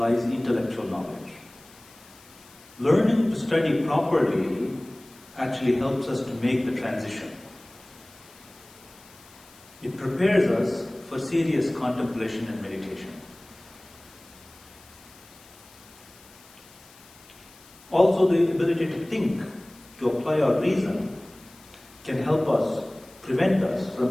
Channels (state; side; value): noise; left; hiss, 24 dB below the sound